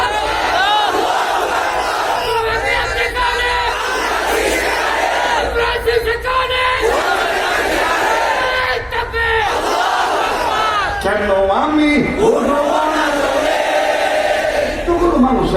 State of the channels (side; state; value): both; identical; correlation 1.00